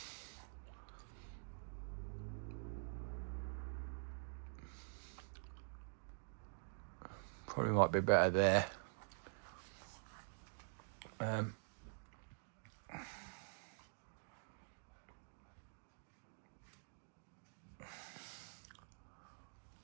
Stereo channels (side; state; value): left; silent; digital silence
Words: probably might be better there.